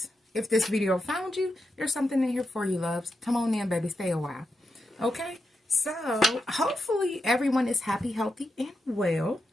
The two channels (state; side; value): normal; both; correlation 0.86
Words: If this video found you, there's something in here for you, loves. Come on in, baby. Stay a while. Okay? So, hopefully everyone is happy, healthy, and well.